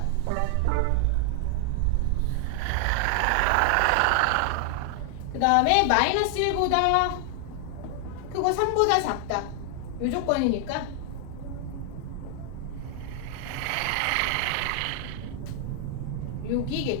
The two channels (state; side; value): different; both; correlation 0.00